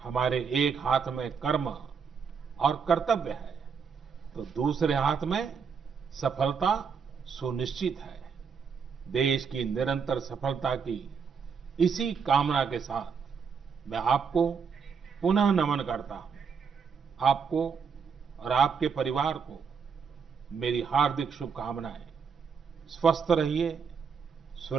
हमारे एक हाथ में कर्म और कर्तव्य है तो दूसरे हाथ में सफलता सुनिश्चित है। देश की निरंतर सफलता की इसी कामना के साथ मैं आपको पुनः नमन करता हूं। आपको और आपके परिवार को मेरी हार्दिक शुभकामनाएं। स्वस्थ रहिए,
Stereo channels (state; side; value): quieter; left; 6.1 dB